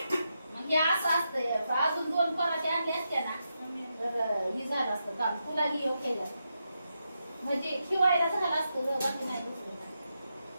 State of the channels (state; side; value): inverted; both; correlation -0.85